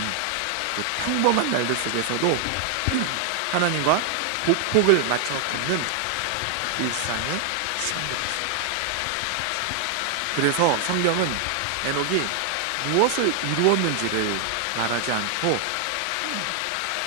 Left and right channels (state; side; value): different; both; correlation 0.00